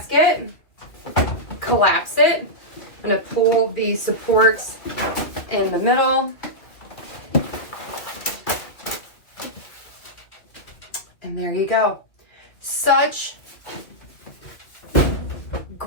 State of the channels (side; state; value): right; late; 2.5 ms